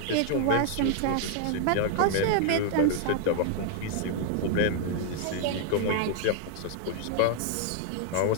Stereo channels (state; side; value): different; both; correlation 0.00